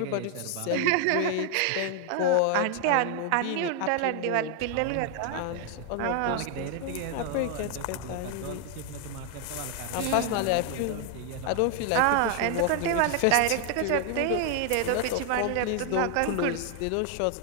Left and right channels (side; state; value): both; different; correlation 0.00